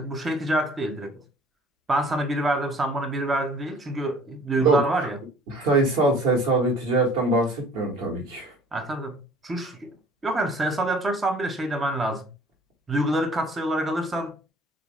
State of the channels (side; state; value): both; normal; correlation 0.51